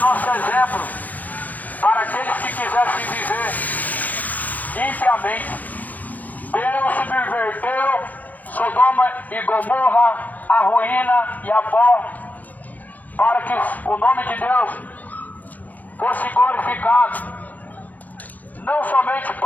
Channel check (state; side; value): late; right; 0.081 ms